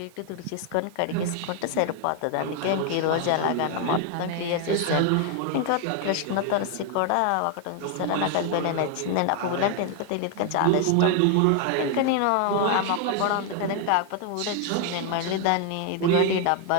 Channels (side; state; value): both; different; correlation 0.00